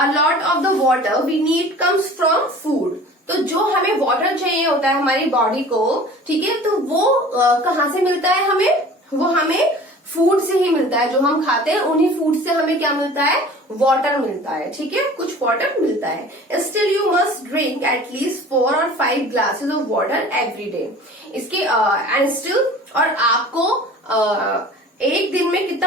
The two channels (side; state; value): both; normal; correlation 0.44